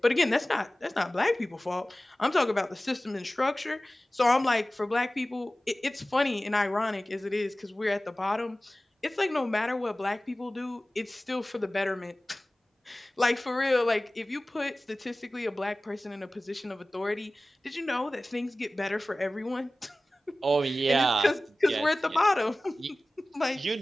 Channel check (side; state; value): both; normal; correlation 0.97